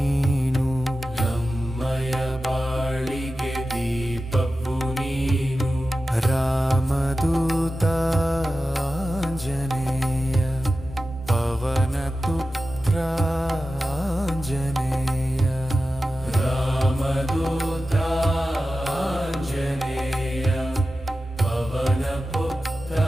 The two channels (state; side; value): normal; both; correlation 0.93